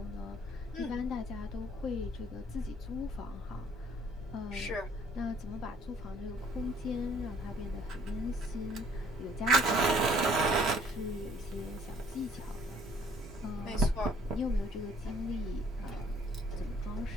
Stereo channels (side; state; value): both; normal; correlation 0.59